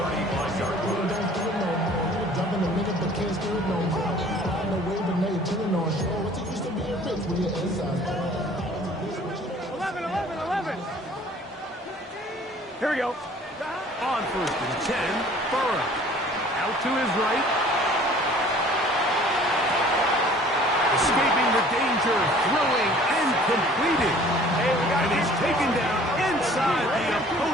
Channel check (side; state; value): both; normal; correlation 0.51